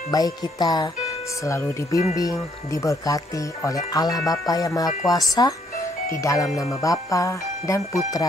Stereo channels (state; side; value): normal; both; correlation 0.69